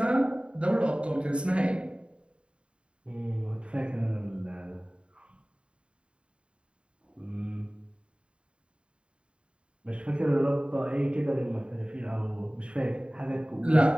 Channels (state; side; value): late; left; 0.056 ms